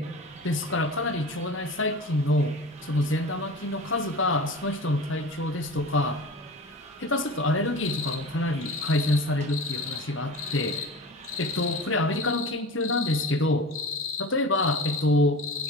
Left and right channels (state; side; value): normal; both; correlation 0.34